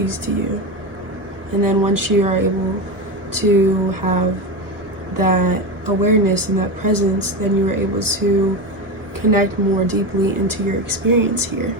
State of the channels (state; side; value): late; left; 1.1 ms